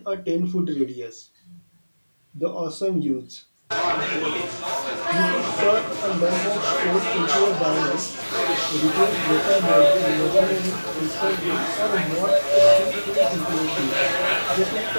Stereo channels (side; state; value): both; inverted; correlation -1.00